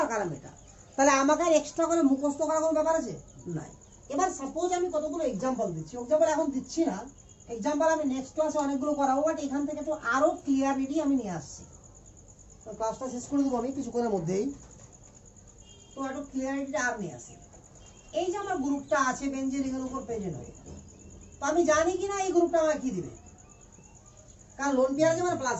আর কারা মেটা। তাহলে আমাকে আর এক্সট্রা করে মুখস্থ করার কোনো ব্যাপার আছে? নাই। এবার সাপোজ আমি কতগুলো এক্সাম্পল দিচ্ছি, এক্সাম্পল এখন দিচ্ছি না, এক্সাম্পল আমি নেক্সট ক্লাসে অনেকগুলো করাবো, বাট এখান থেকে তো আরো ক্লিয়ারিটি আমি নিয়ে আসছি। ক্লাসটা শেষ করে দেবো আমি কিছুক্ষণের মধ্যেই। তো একটু ক্লিয়ারিটিটা আর নিয়ে আসি। এই যে আমার গ্রুপটা আছে বেঞ্জিন রিংয়ের উপর প্রেজেন্ট হয়ে, তো আমি জানি কিনা এই গ্রুপটা আমাকে কি দিবে, কারণ লোন পেয়ার আছে মানে প্লাস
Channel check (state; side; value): identical; both; correlation 1.00